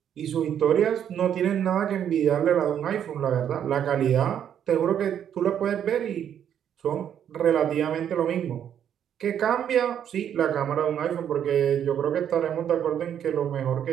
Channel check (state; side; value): quieter; left; 9.3 dB